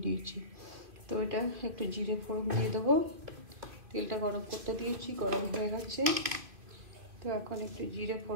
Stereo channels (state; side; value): late; left; 2.6 ms